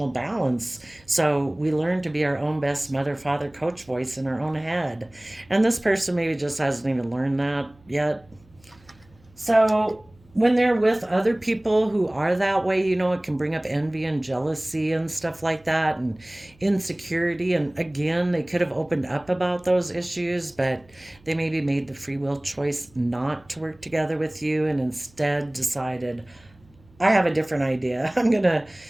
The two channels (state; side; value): noise; right; hum, 29 dB below the sound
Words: balance. So we learn to be our own best mother, father, coach voice in our own head. And this person maybe just hasn't even learned that yet. So when they're with other people who are that way, it can bring up envy and jealousy and stuff like that, and insecurity. And again, they could have opened up about those issues, but they maybe made the free will choice not to work together with you and instead decided, I have a different idea. I'm going to